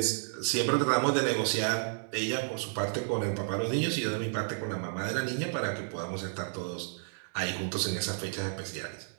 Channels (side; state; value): left; silent; 57 dB below the other